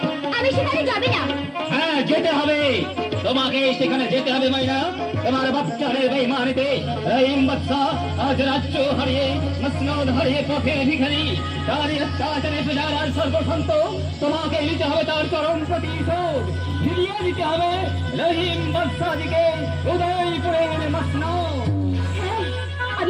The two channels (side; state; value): both; identical; correlation 1.00